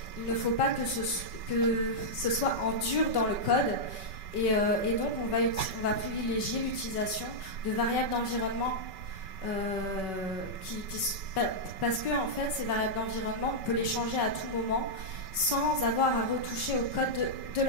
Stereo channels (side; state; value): right; late; 5.3 ms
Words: il ne faut pas que ce soit en dur dans le code. Et donc, on va privilégier l'utilisation de variables d'environnement parce que, en fait, ces variables d'environnement, on peut les changer à tout moment sans avoir à retoucher au code de